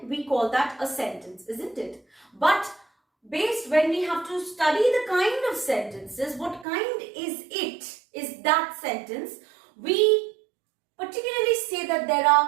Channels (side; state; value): left; drops out; at 6.7 s